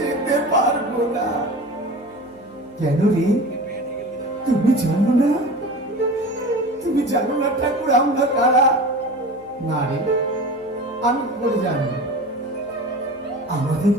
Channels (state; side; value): noise; left; hum, 26 dB below the sound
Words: যেতে পারবো না। কেন রে, তুমি জানো না? তুমি জানো না ঠাকুর আমরা কারা? না রে, আমি কি করে জানবো? আমাদের